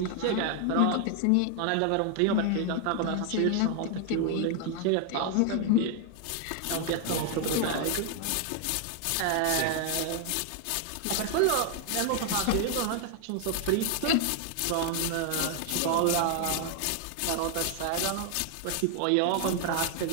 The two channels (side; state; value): both; different; correlation 0.00